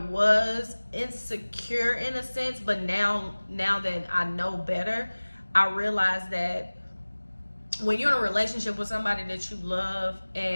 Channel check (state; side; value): inverted; both; correlation -1.00